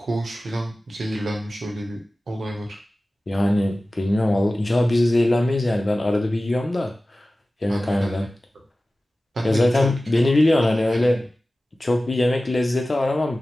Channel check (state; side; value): normal; both; correlation 0.96